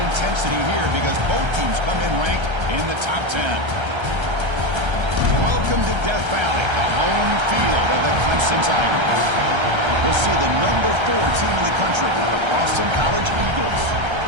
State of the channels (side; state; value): left; late; 1.3 ms